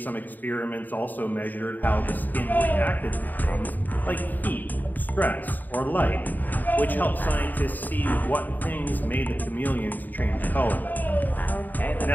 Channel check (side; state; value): right; late; 0.087 ms